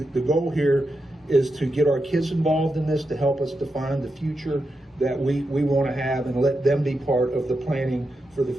the goal here is to get our kids involved in this, to help us define the future that we want to have, and let them be part of the planning for the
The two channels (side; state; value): both; normal; correlation 0.87